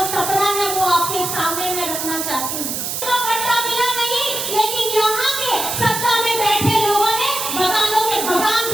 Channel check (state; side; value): noise; right; hiss, 3 dB below the sound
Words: सपना है, वो आपके सामने मैं रखना चाहती हूँ। पट्टा मिला नहीं, लेकिन यहाँ के सत्ता में बैठे लोगों ने मकानों के मकान